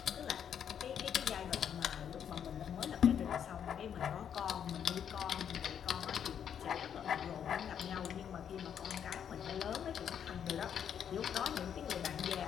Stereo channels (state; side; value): quieter; right; 8.6 dB